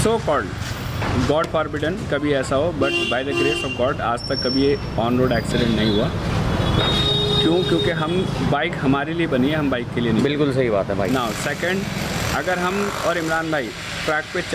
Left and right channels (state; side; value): identical; both; correlation 1.00